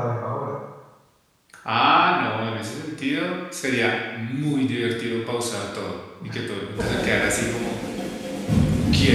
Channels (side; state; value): both; identical; correlation 1.00